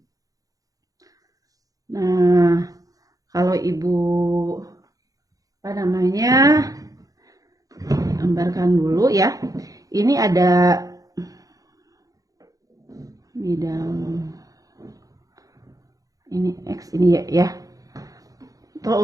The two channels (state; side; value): late; left; 0.17 ms